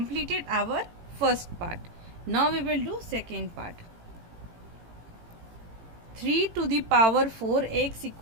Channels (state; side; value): late; left; 18 ms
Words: our first part. Now we will do second part. 3 to the power 4x